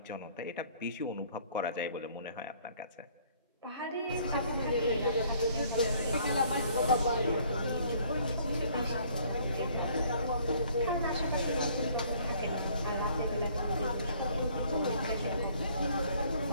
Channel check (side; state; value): both; inverted; correlation -0.59